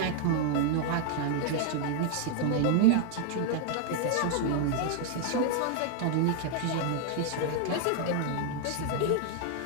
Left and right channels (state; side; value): different; both; correlation 0.00